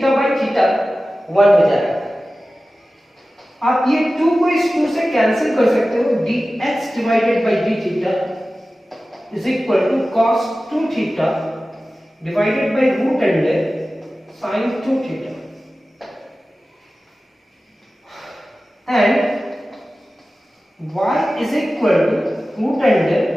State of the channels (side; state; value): both; normal; correlation 0.96